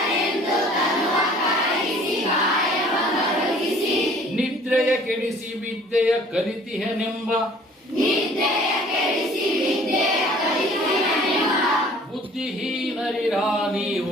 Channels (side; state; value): both; normal; correlation 0.52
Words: ನಿದ್ರೆಯ ಕೆಡಿಸಿ ವಿದ್ಯೆಯ ಕಲಿತಿಹನೆಂಬ. ಬುದ್ಧಿಹೀನರಿರ